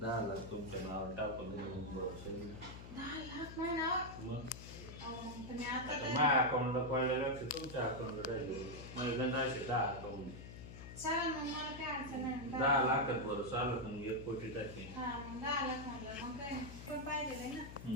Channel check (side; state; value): left; noise; hum, 12 dB below the sound